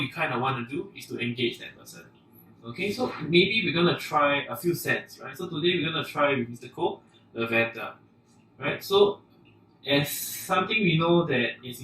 kind of want to do is to engage that person. Okay, so maybe we're gonna try a few scents, right? So today we're gonna try with Mr. Cole, lavender, right? So as something we know that is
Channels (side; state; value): both; identical; correlation 1.00